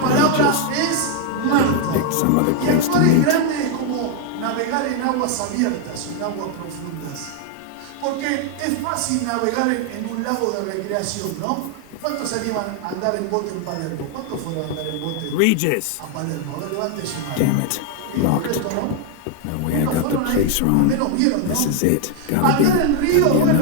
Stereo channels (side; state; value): both; different; correlation 0.00